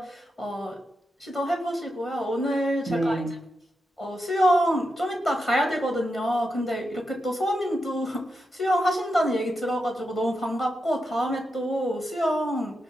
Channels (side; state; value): both; normal; correlation 0.87